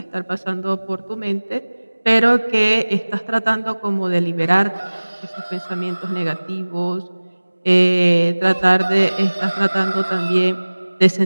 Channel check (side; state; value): both; inverted; correlation -1.00